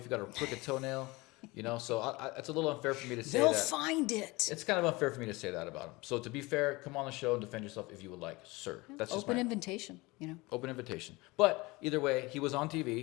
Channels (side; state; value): right; quieter; 22.9 dB